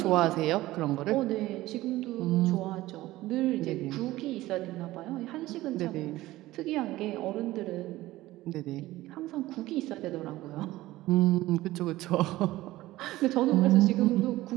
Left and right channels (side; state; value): left; quieter; 17.0 dB